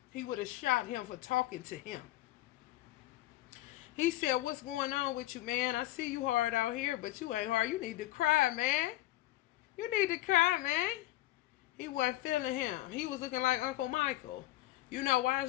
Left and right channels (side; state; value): right; quieter; 16.6 dB